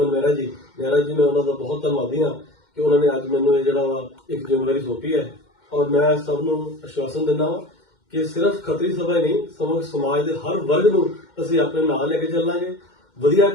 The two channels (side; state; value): right; late; 2.1 ms